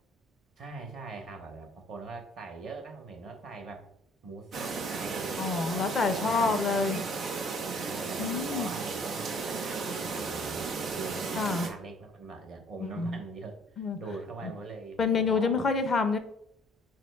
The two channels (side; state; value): both; normal; correlation 0.58